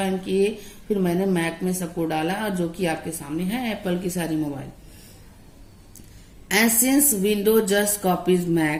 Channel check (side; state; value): both; identical; correlation 1.00